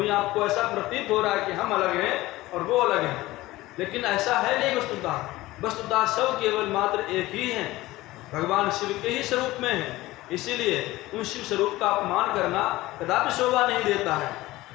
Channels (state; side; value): quieter; right; 18.2 dB